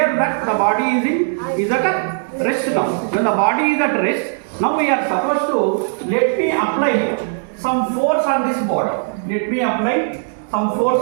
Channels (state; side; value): silent; left; digital silence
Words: that the body is at rest now. When the body is at rest, now we are supposed to let me apply some force on this body. Let me apply some force